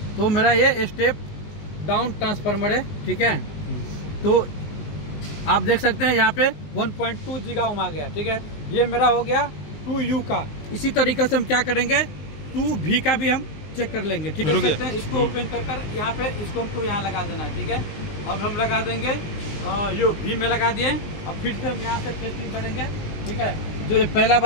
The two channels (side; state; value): right; late; 19 ms